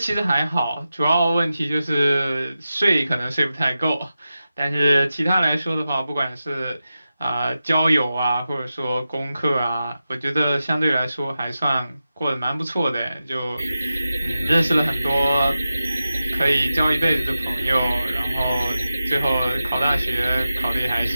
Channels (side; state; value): both; inverted; correlation -0.92